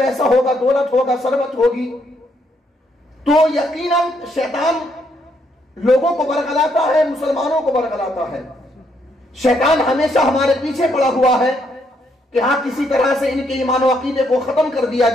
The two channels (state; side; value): normal; both; correlation 0.73